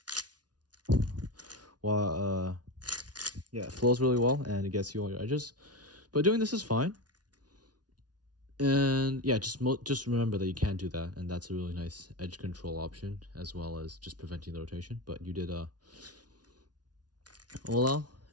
yeah, it flows really well, and it gets you all your edges. But doing this is fine. And yeah, just remember that you can do that, and that's a really nice edge control option, as well as just preventing the rotation. But you did OLL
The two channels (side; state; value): left; late; 0.69 ms